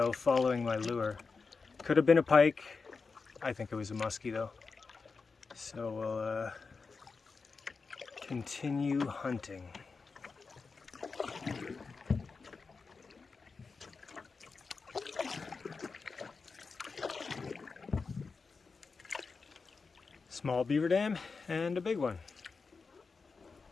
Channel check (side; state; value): right; quieter; 4.6 dB